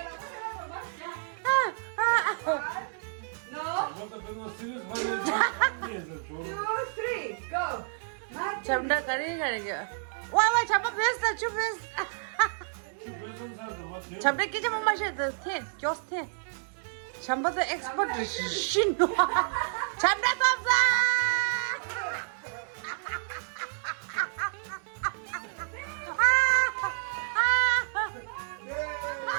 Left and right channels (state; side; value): silent; left; digital silence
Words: Вот это у нас серьезно, не за 2, 3, go. 잠다 가리가. 와, 잠바 베스트, 주 베스트. 잠다 끼지 못 마셔도 돼. just 돼. 잠바도 엑스퍼트 신노. 잠다도 없어.